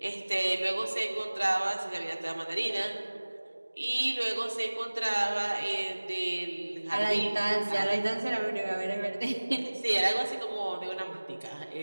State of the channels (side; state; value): both; inverted; correlation -1.00